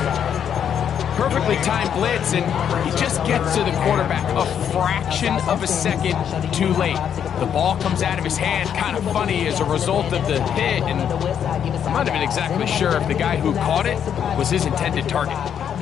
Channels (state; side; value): quieter; right; 8.6 dB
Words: Perfectly timed blitz, and he just gets to the quarterback a fraction of a second too late. The ball comes out of his hand kind of funny as a result of the hit, and I'm not even exactly sure if the guy who caught it was his intended target.